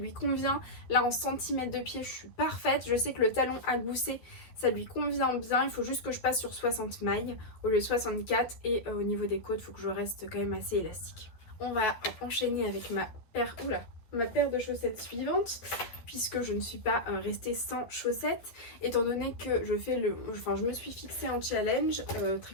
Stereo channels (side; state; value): right; late; 12 ms